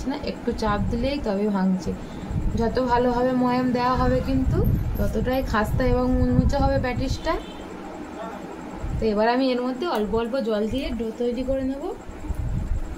না, একটু চাপ দিলেই তবে ভাঙছে। যত ভালোভাবে ময়াম দেওয়া হবে কিন্তু ততটাই খাস্তা এবং মুচমুচে হবে প্যাটিসটা। তো এবার আমি এর মধ্যে অল্প অল্প জল দিয়ে ডো তৈরি করে নেব।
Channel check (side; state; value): both; identical; correlation 1.00